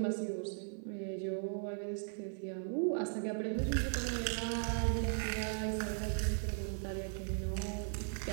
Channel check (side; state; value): left; silent; 53 dB below the other